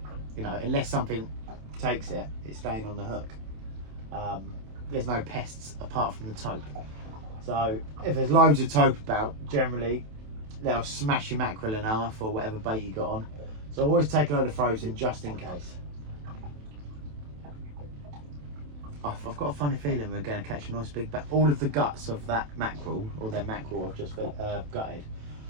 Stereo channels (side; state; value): left; late; 27 ms